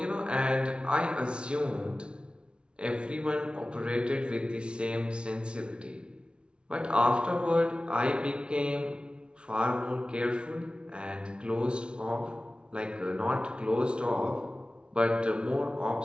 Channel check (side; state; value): left; late; 0.057 ms